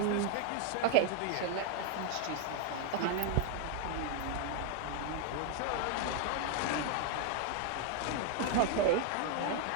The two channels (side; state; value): both; different; correlation 0.00